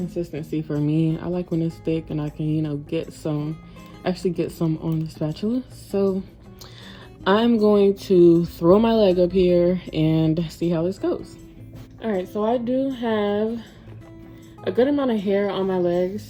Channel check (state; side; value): identical; both; correlation 1.00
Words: for me. I like when it's thick and I can, you know, actually get some on the spatula. So I'm going to throw my leg up here and see how this goes. All right, so I do have a good amount of hair on my